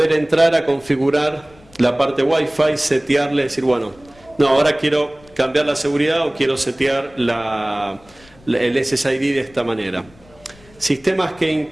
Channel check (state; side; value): noise; left; rumble, 27 dB below the sound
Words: entrar a configurar la parte Wi-Fi, setearle, decir, bueno, no, ahora quiero cambiar la seguridad o quiero setear el SSID de esta manera. Sistemas que